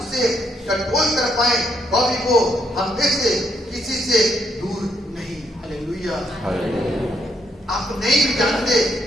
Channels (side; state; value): both; normal; correlation 0.75